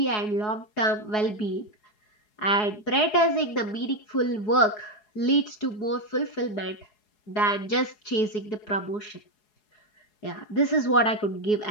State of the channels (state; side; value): late; right; 4.7 ms